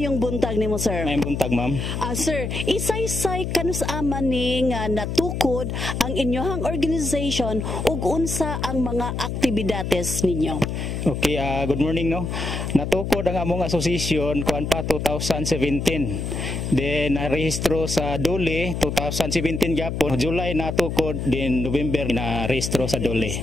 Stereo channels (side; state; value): left; noise; hum, 3 dB below the sound